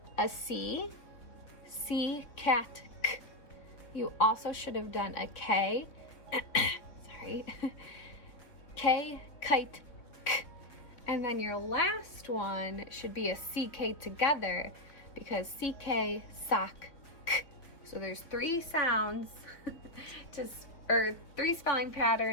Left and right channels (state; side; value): late; right; 3.8 ms